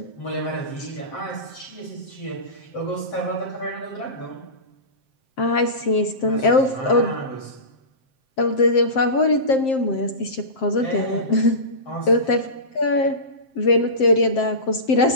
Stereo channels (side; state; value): right; late; 7.6 ms